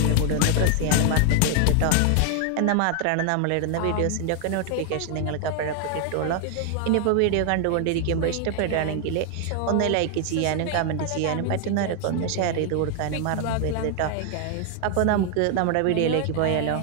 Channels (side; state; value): both; different; correlation 0.00